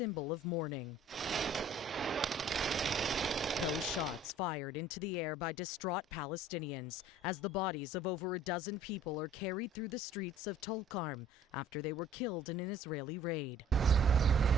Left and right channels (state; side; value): normal; both; correlation 0.53